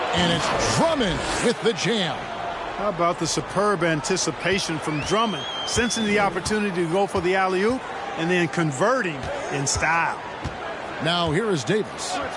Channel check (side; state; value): both; identical; correlation 1.00